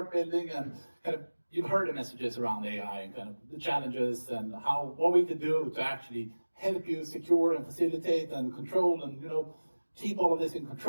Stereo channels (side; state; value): both; inverted; correlation -1.00